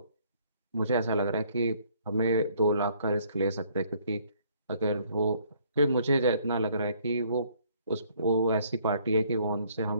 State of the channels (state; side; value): inverted; both; correlation -0.63